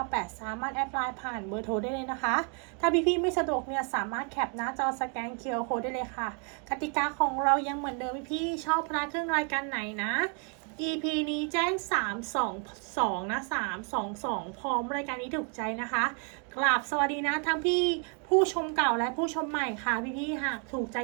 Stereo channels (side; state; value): left; quieter; 38.2 dB